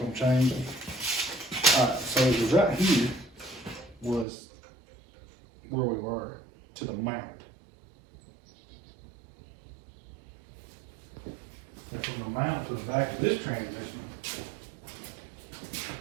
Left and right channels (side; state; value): left; drops out; at 4.2 s